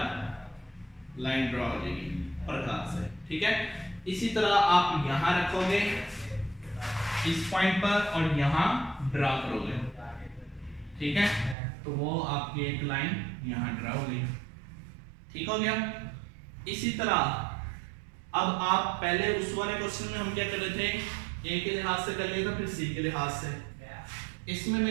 लाइन ड्रॉ हो जाएगी प्रकार से। ठीक है, इसी तरह आप यहाँ रखोगे इस पॉइंट पर और यहाँ ड्रा करोगे। ठीक है, तो वो आपकी एक लाइन यहाँ ड्रा हो गई। ठीक हो गया। इसी तरह अब आप पहले उस वाले क्वेश्चन में हम क्या कर रहे थे, A के लिहाज से कर लिया था, फिर C के लिहाज से। इसमें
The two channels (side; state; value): left; drops out; at 11.6 s